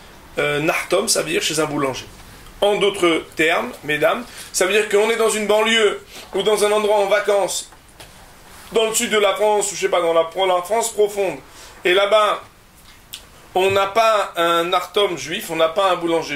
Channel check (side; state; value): both; identical; correlation 1.00